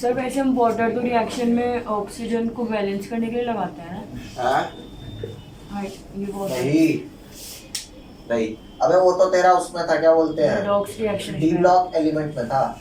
वैसे हम वाटर तो रिएक्शन में ऑक्सीजन को बैलेंस करने के लिए लगाते हैं ना? हाँ, ये बहुत नहीं, अबे वो तो तेरा उसमें था, क्या बोलते हैं, redox reaction D block element में था।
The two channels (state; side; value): identical; both; correlation 1.00